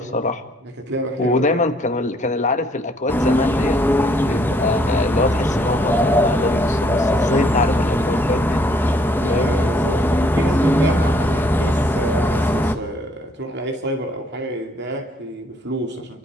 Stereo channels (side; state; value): both; normal; correlation 0.65